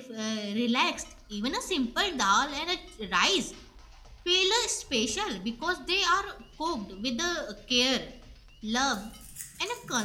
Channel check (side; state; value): both; identical; correlation 1.00